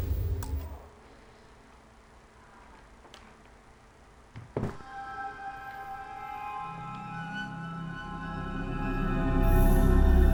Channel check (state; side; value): identical; both; correlation 1.00